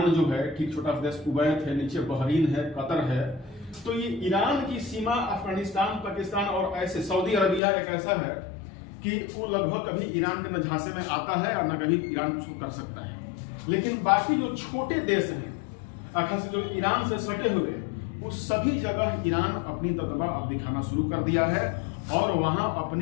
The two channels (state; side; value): drops out; right; at 7.6 s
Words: जो है ठीक छोटा देश कुवैत है, नीचे बहरीन है, कतर है, तो ये ईरान की सीमा अफगानिस्तान, पाकिस्तान और ऐसे सऊदी अरबिया एक ऐसा है कि वो लगभग कभी ईरान के न झांसे में आता है और न कभी ईरान कुछ कर सकता है। लेकिन बाकी जो छोटे देश हैं खास जो ईरान से सटे हुए, वो सभी जगह ईरान अपनी दबदबा अब दिखाना शुरू कर दिया है और वहां